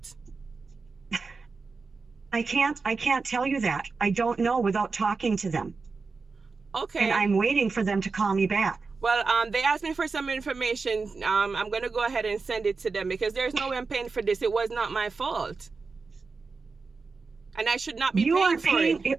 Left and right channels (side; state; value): left; quieter; 4.4 dB